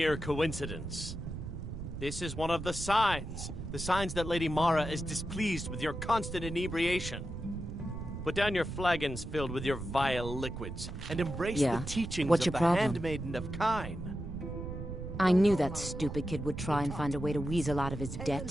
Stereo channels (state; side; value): noise; right; rumble, 8 dB below the sound